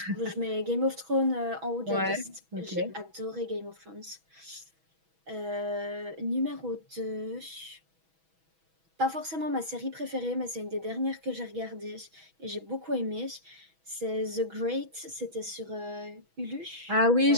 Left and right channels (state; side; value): late; left; 6.2 ms